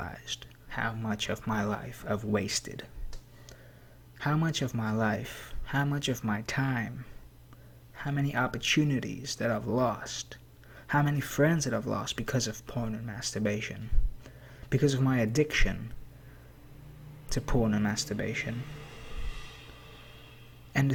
how much of my life I've wasted. How much of my life, how much of my time, how many opportunities that I've lost, how many friends that I've lost because of porn and masturbation, because of my addiction to porn and masturbation. And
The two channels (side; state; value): both; identical; correlation 1.00